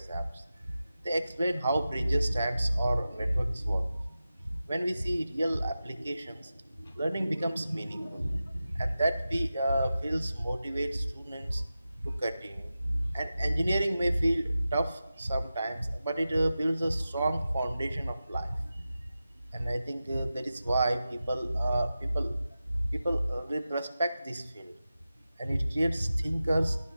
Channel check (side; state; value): both; inverted; correlation -0.93